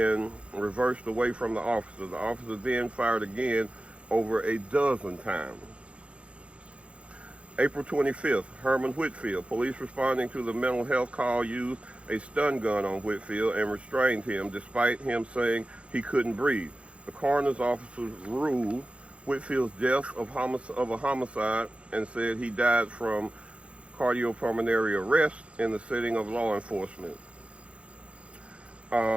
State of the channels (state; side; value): late; left; 0.061 ms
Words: reversed away from the officer. The officer then fired again over a dozen times. April 25th, Herman Whitfield. Police responding to the mental health call used a stun gun on Whitfield and restrained him despite him saying he couldn't breathe. The coroner's officers ruled Whitfield's death of a homicide and said he died from cardiopulmonary arrest in the setting of law enforcement.